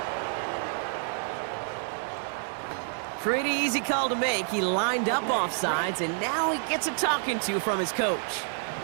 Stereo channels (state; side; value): silent; left; 59 dB below the other